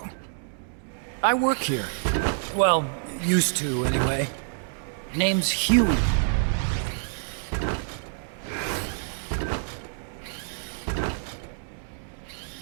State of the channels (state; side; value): silent; left; digital silence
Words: I work here. Well, used to, anyway. Name's Huey.